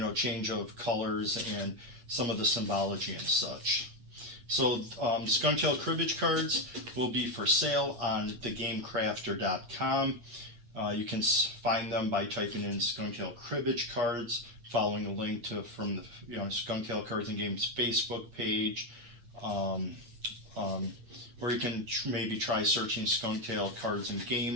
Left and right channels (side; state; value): left; late; 8.5 ms